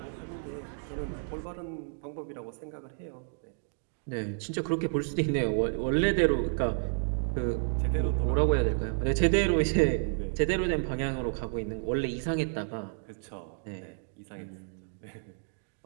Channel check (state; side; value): silent; left; digital silence